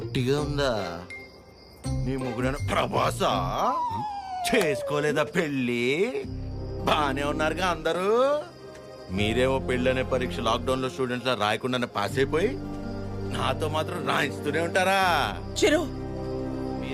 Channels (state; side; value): identical; both; correlation 1.00